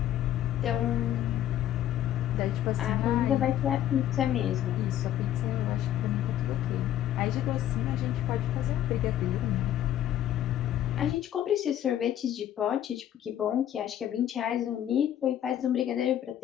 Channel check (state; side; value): quieter; right; 11.6 dB